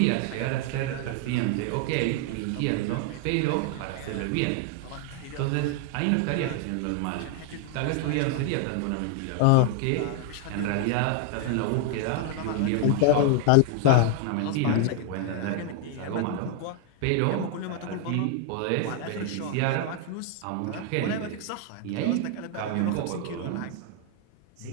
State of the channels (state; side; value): different; both; correlation 0.00